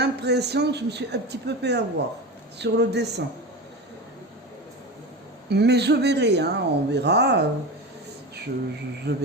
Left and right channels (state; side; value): normal; both; correlation 0.26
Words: que je me suis un petit peu fait avoir sur le dessin. Mais je verrai, hein, on verra. Je